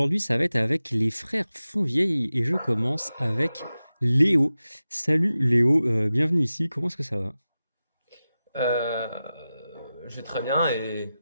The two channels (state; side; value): inverted; both; correlation -0.94